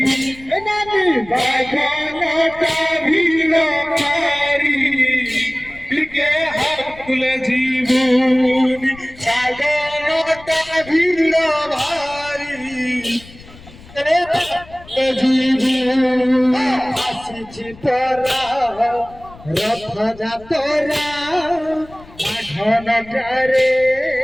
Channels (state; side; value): noise; left; rumble, 21 dB below the sound